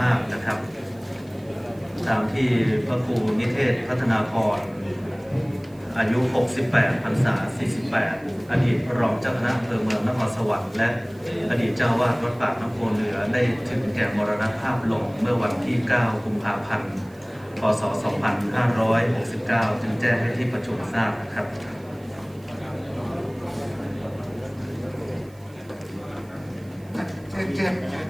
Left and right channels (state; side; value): noise; right; hiss, 29 dB below the sound